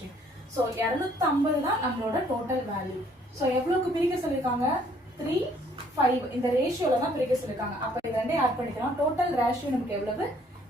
ஸோ 250 தான் நம்மளோட டோட்டல் வேல்யூ. ஸோ எவ்வளோக்கு பிரிக்க சொல்லியிருக்காங்க? 3:5 இந்த ரேஷியோல தான் பிரிக்க சொல்லியிருக்காங்க. அப்போ இது ரெண்டே ஆட் பண்ணிக்கலாம். டோட்டல் ரேஷியோ நமக்கு எவ்வளவு?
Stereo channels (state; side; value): normal; both; correlation 0.62